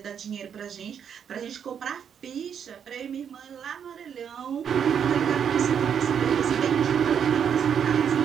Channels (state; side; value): quieter; left; 8.0 dB